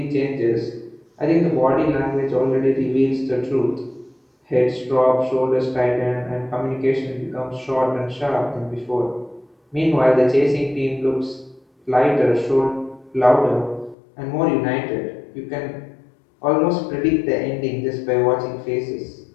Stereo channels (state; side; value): drops out; right; at 14.0 s